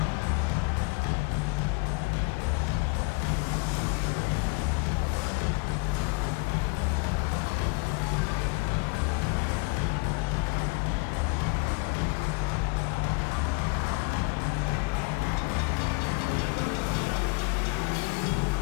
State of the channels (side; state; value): right; quieter; 31.3 dB